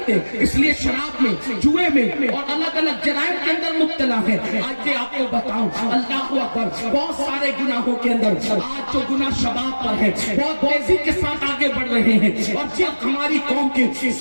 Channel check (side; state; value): both; inverted; correlation -1.00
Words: اس لیے شراب میں, جوئے میں اور الگ الگ جرائم کے اندر مبتلا ہے. آج آپ کو بتاؤں, اللہ اکبر, بہت سارے گناہوں کے اندر آج جو گناہ شباب پر ہے بہت تیزی کے ساتھ آگے بڑھ رہے ہیں. اور جب ہماری قوم کے